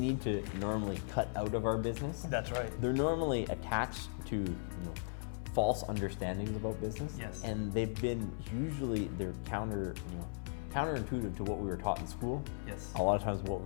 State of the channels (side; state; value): right; silent; 53 dB below the other